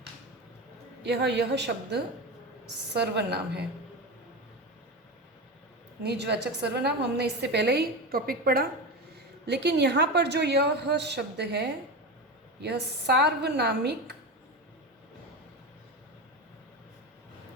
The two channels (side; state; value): both; normal; correlation 0.21